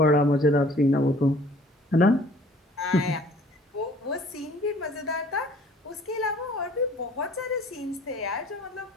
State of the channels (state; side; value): normal; both; correlation 0.53